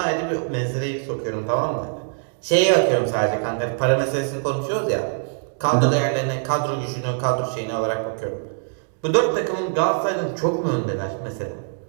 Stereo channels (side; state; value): left; silent; digital silence